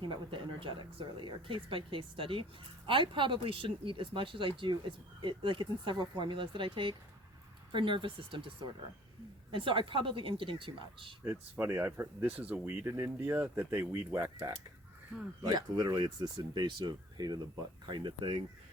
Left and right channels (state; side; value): normal; both; correlation 0.52